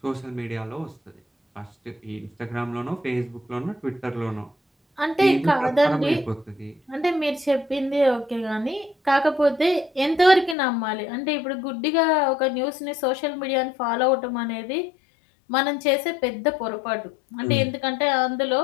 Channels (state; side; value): drops out; right; at 10.6 s